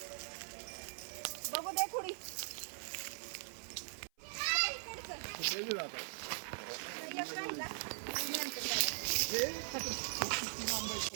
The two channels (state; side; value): silent; left; 51 dB below the other